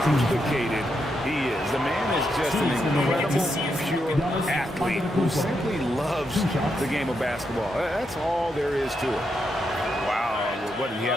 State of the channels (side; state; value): both; normal; correlation 0.82